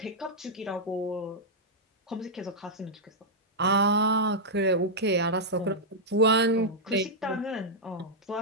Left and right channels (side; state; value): both; normal; correlation -0.07